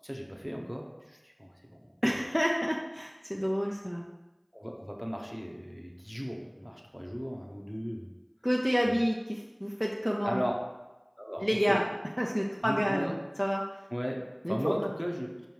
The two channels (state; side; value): identical; both; correlation 1.00